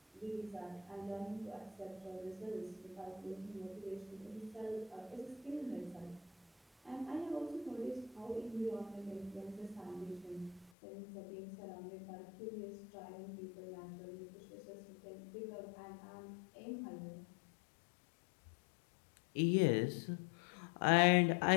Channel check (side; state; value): right; drops out; at 10.7 s